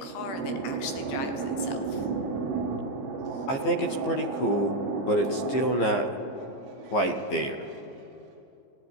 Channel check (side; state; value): right; late; 15 ms